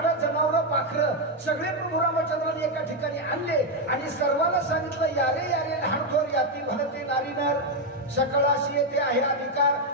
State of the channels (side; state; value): both; normal; correlation 0.04